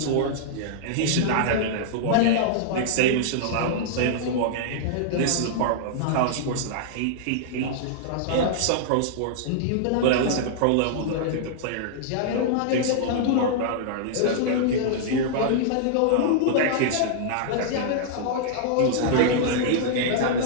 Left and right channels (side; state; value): both; different; correlation -0.01